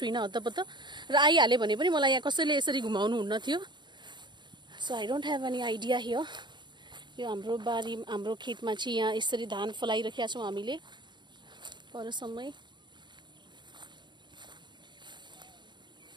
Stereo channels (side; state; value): left; late; 0.22 ms